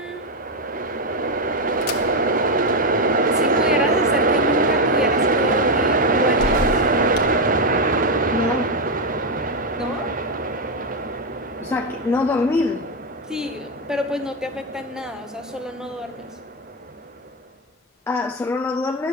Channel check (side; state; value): both; normal; correlation 0.06